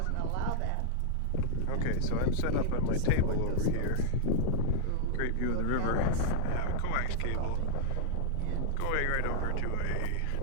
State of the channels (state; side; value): different; both; correlation -0.01